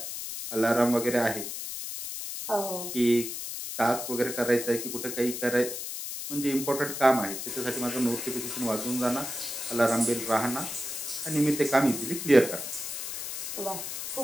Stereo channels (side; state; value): left; noise; hiss, 6 dB below the sound